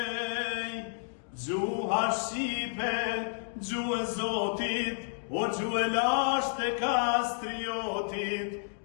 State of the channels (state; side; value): silent; right; digital silence